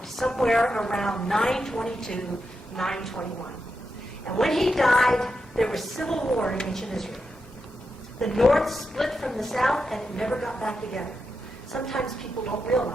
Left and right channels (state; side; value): normal; both; correlation 0.86